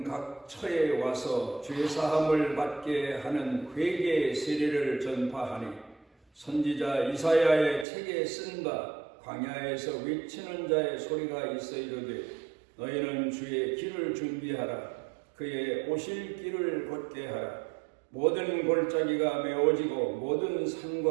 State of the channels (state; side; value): drops out; left; at 7.9 s